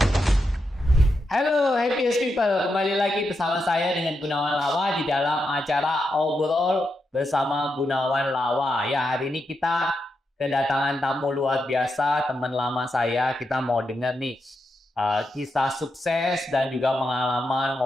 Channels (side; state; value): both; normal; correlation 0.85